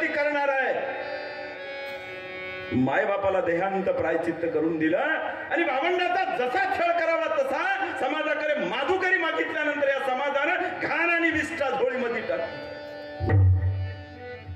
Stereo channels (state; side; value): identical; both; correlation 1.00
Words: करणार आहे. माय बापाला देहांत प्रायचित्त करून दिलं आणि भावंडाचा जसा छळ करावा तसा समाजाकडे माधुकरी मागितल्यानंतर या समाजानं घाण आणि विष्ठा झोळीमध्ये टाकली.